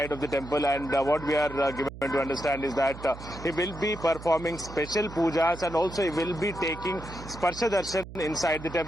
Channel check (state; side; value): noise; right; hum, 13 dB below the sound